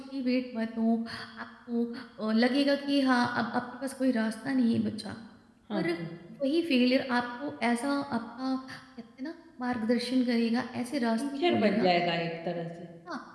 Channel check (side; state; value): both; identical; correlation 1.00